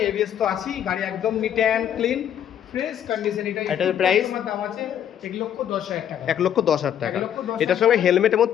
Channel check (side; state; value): right; quieter; 9.8 dB